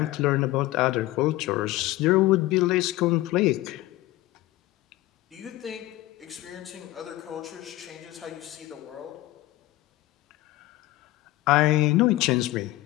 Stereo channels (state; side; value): quieter; right; 17.3 dB